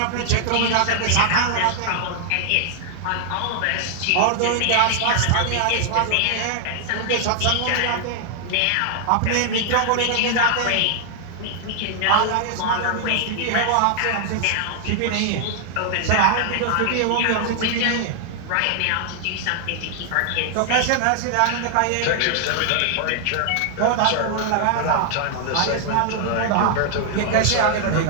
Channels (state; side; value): different; both; correlation 0.00